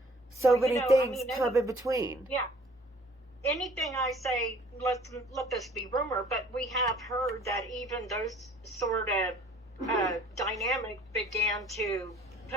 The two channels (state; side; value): normal; both; correlation 0.54